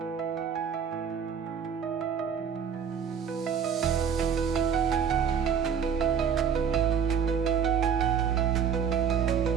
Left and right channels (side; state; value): left; quieter; 7.3 dB